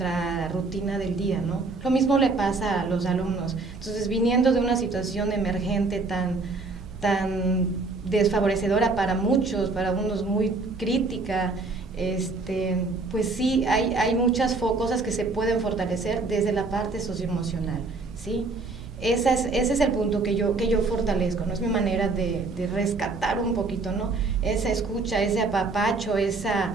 rutina del día, ¿no? Lo mismo le pasa a los alumnos. Entonces, viniendo de una situación emergente tan desfavorecedora para muchos, para unos muy crítica, pues sí, hay muchas cosas que se pueden fortalecer desde la parte socioemocional, ¿sí? Ese es el punto que yo fortalezco, ¿no? Es mi manera de rescatar un poquito, ¿no? Esa escucha, ese apapacho, esa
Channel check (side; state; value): left; quieter; 3.7 dB